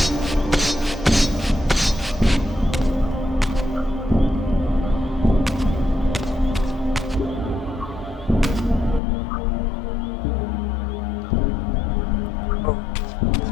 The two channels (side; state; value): right; drops out; at 9.0 s